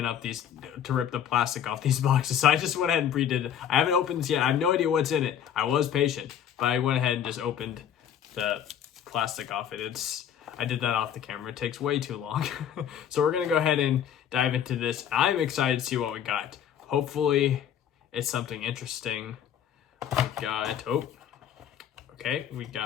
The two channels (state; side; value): quieter; right; 9.3 dB